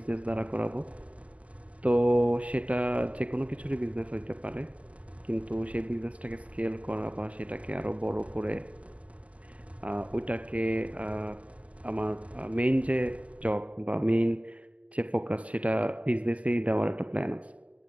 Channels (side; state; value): left; late; 0.066 ms